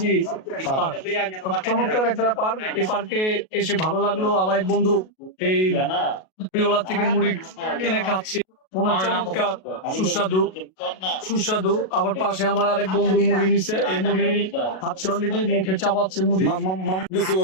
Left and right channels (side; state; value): right; late; 37 ms